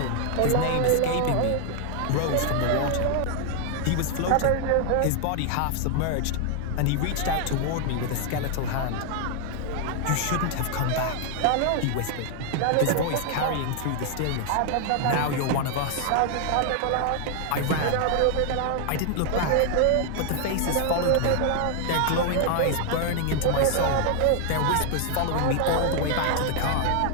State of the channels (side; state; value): both; different; correlation 0.00